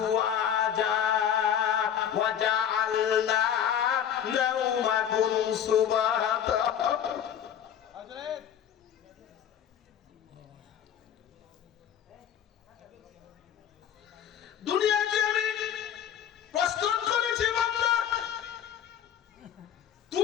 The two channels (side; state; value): right; quieter; 9.3 dB